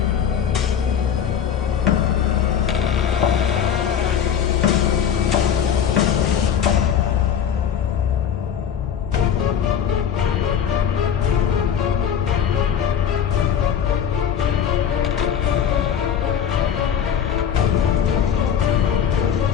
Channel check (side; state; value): right; quieter; 8.5 dB